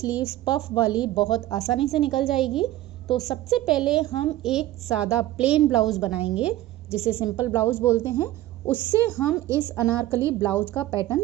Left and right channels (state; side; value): quieter; left; 15.1 dB